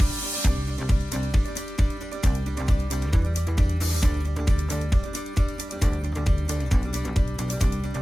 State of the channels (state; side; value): normal; both; correlation 0.96